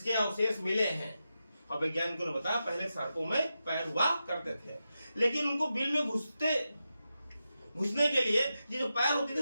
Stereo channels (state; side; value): inverted; both; correlation -0.90